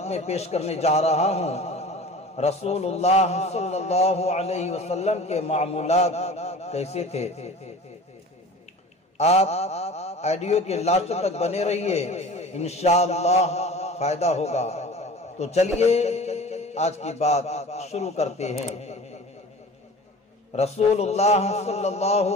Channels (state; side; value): normal; both; correlation 0.40